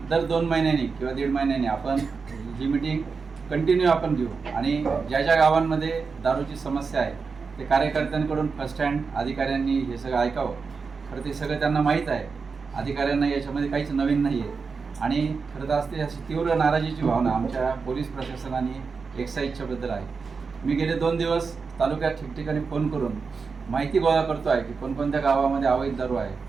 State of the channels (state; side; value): quieter; left; 5.0 dB